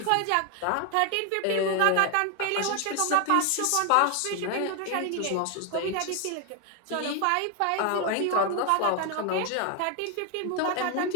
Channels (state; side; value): different; both; correlation 0.01